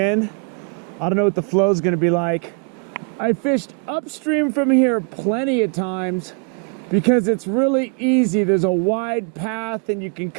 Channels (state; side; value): quieter; left; 37.8 dB